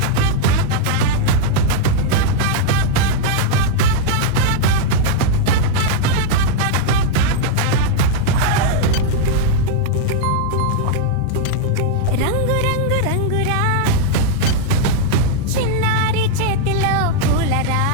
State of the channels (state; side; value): different; both; correlation 0.00